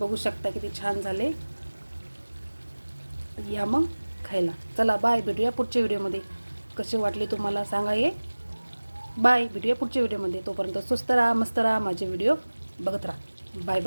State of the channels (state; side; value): inverted; both; correlation -1.00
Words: शकता किती छान झाले. या मग खायला. चला बाय, भेटूया पुढच्या व्हिडिओमध्ये. कसे वाटले तुम्हाला सांगा हे. बाय, भेटूया पुढच्या व्हिडिओमध्ये. तोपर्यंत स्वस्त राहा, मस्त राहा, माझे व्हिडिओ बघत राहा. Bye